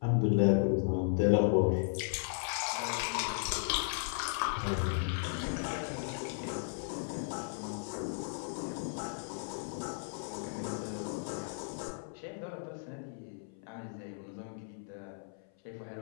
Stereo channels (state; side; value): silent; right; 54 dB below the other